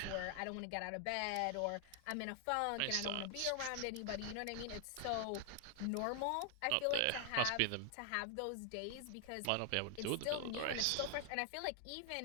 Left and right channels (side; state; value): both; different; correlation 0.00